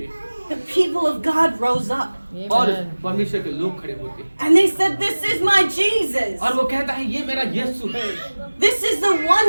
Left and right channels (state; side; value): inverted; both; correlation -1.00